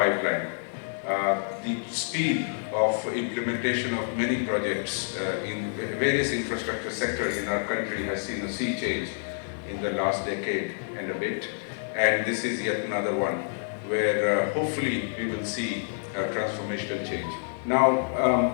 The speed of implementation of many projects in various infrastructure sectors in our country has seen a sea change in the last decade and a bit, and this is yet another one where hopefully we will see a transformational change.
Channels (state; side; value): silent; right; digital silence